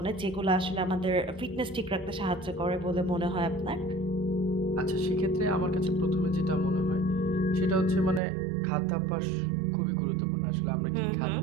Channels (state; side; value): drops out; left; at 8.2 s